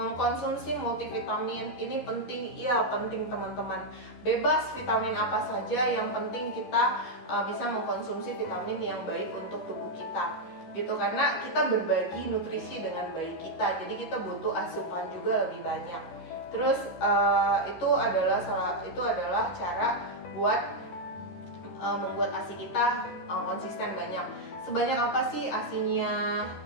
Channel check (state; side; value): late; right; 12 ms